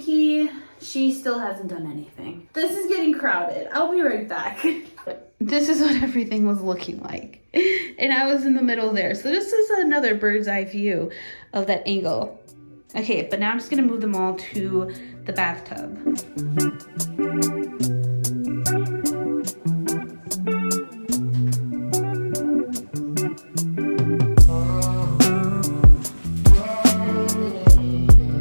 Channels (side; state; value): both; inverted; correlation -1.00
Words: She still hasn't done anything. This is getting crowded. I'll be right back. This is what everything was looking like. And I was in the middle there. So this is another bird's eye view of that angle. Okay, but now I'm just gonna move them all to the bathtub.